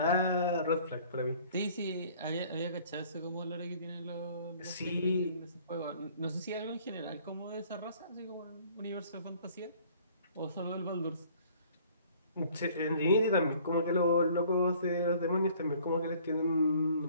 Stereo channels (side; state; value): both; inverted; correlation -0.55